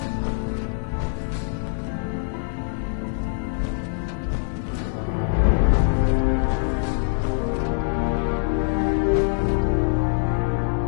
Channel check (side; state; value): right; silent; 61 dB below the other